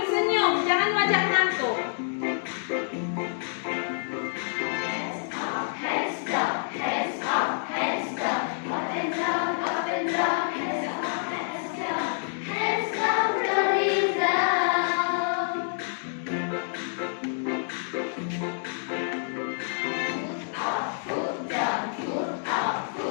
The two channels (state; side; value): silent; right; digital silence